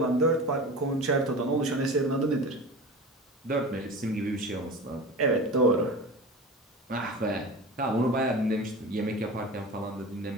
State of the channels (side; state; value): both; normal; correlation 0.32